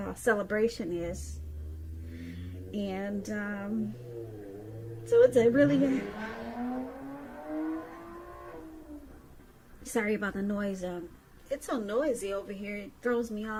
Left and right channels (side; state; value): both; identical; correlation 1.00